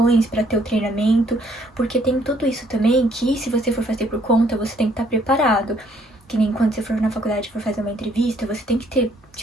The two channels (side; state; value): both; normal; correlation 0.66